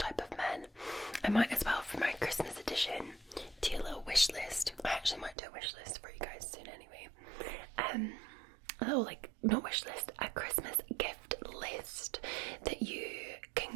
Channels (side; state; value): left; drops out; at 5.4 s